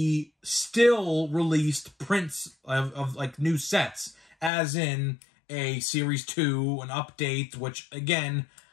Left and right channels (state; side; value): drops out; right; at 4.5 s